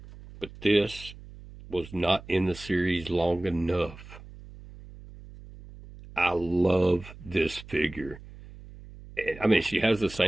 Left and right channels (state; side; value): noise; right; hum, 17 dB below the sound